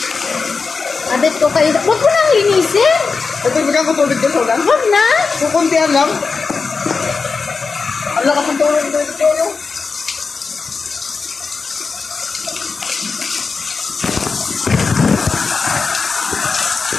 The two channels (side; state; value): right; quieter; 4.7 dB